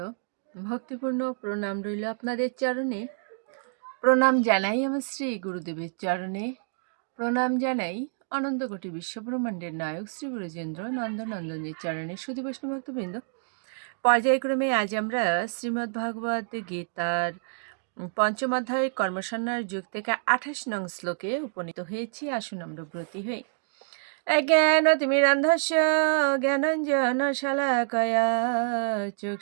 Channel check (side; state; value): left; silent; digital silence